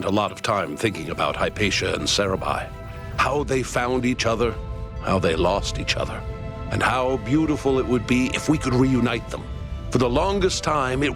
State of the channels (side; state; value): both; identical; correlation 1.00